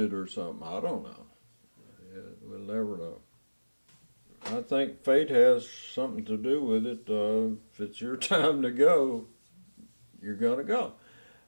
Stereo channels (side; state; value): both; inverted; correlation -1.00